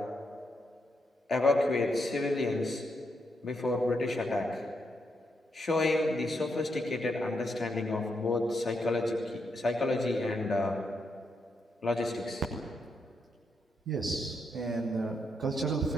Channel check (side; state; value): both; normal; correlation 0.80